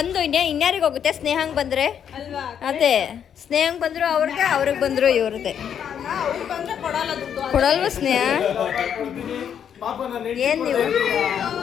ಒಂದು ಇನ್ಯಾರಿಗೆ ಹೋಗುತ್ತೆ? ಸ್ನೇಹಂಗ್ ಬಂದ್ರೆ ಅಲ್ವಾ? ಅದೇ ಸ್ನೇಹಂಗ್ ಬಂದ್ರು ಅವ್ರಿಗೆ ಬಂದ್ರು ಇವ್ರದ್ದೆ. ಅವ್ರು ಬಂದ್ರೆ ಕೊಡಲ್ಲ ದುಡ್ಡು. ಕೊಡಲ್ವ ಸ್ನೇಹ? ಕೊಡ್ತೀನಿ. ಪಾಪ ನನ್ನ ಏನ್ ನೀವು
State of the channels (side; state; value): right; quieter; 8.5 dB